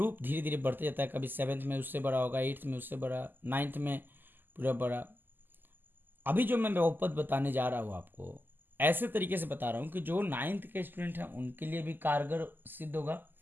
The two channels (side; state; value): left; late; 0.091 ms